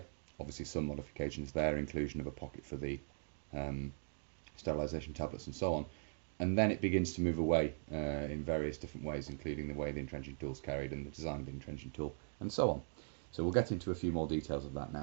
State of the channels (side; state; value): left; silent; digital silence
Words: Obviously some modifications there, inclusion of a pocket for the sterilisation tablets and so on. And then it begins to move away in various different ways, including the way the entrenching tool is carried and the design of the entrenching tool and so on. So we'll get into a few more details of that